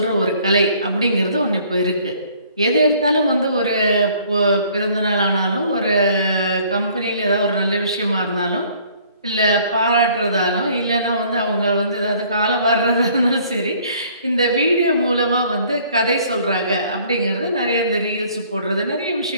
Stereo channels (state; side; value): inverted; both; correlation -0.58